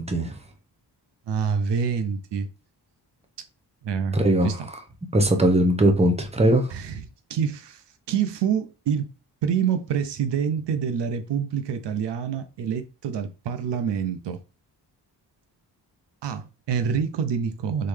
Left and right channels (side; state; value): left; quieter; 3.4 dB